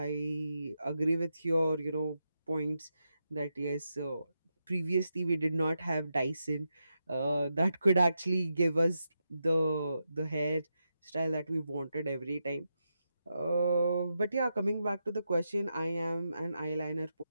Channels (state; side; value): inverted; both; correlation -0.86